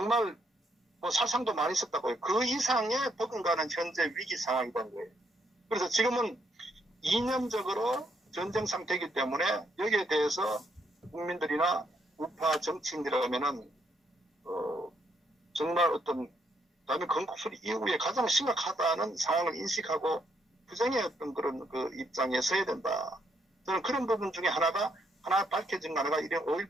뭐 살상도 많이 있었다고요. 그 이상의 버금가는 현재 위기 상황이 된 거예요. 그래서 지금은 이념적으로 전쟁 상태이기 때문에 여기에 대해서 국민들이나 우파 정치인들이라면은 정말 어떤 다음에 건국수리 이후에 가장 심각하다는 상황을 인식하고 투쟁의 어떤 그런 그 입장에 서야 된다. 저는 그런 부분 중에 하나 밝혀진 하나가 이런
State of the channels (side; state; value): both; normal; correlation 0.74